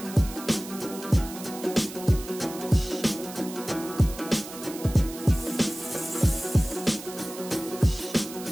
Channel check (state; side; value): noise; right; hiss, 13 dB below the sound